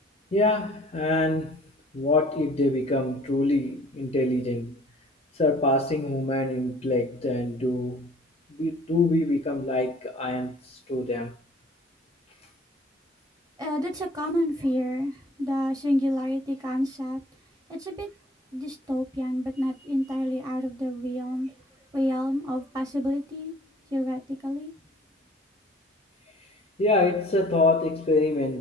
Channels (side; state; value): both; normal; correlation 0.54